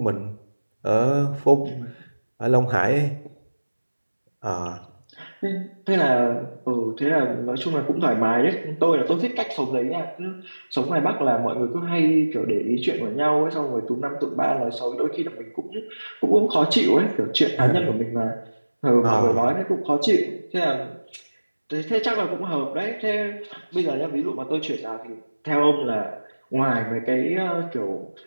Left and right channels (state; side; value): inverted; both; correlation -1.00